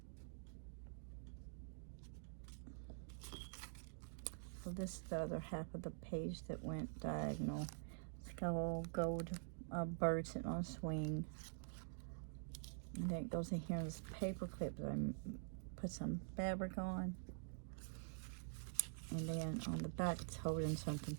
So this is the other half of the page that went diagonal. It's got a little gold bird sitting on a swing. And then it goes in here in this paper clip that I put some fabric on. And then on the back it's holding something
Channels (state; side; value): silent; left; digital silence